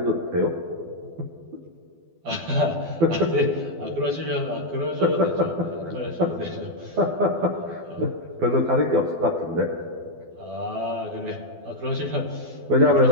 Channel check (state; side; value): late; left; 12 ms